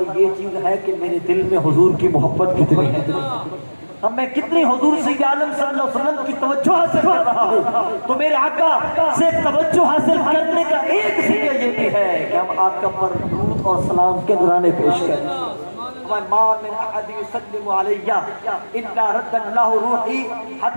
یہ چیز ہے کہ میرے دل میں حضور کی محبت کتنی ہے۔ اب میں کتنی حضور سید عالم صلی اللہ علیہ وسلم کی توجہ حاصل کر رہا ہوں، تو میرے آقا سے توجہ حاصل کرنے کا ایک ذریعہ یہ بھی ہے کہ ہم آقا پر درود اور سلام کے نذرانے پیش کریں۔ ما من احد يسلم علي الا رد الله روحي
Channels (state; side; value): inverted; both; correlation -1.00